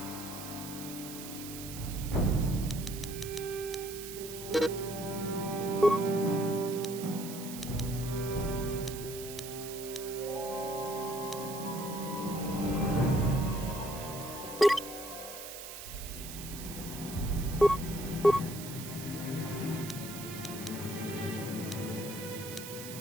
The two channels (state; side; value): noise; right; hiss, 10 dB below the sound